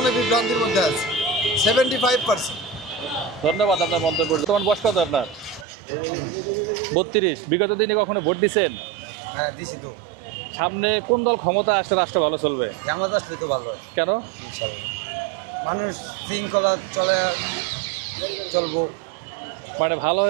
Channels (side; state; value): left; drops out; at 5.7 s